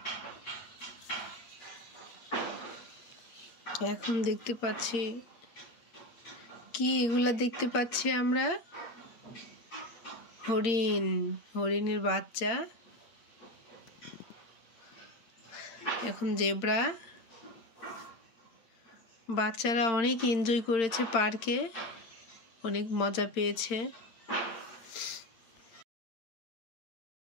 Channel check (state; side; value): late; right; 8.8 ms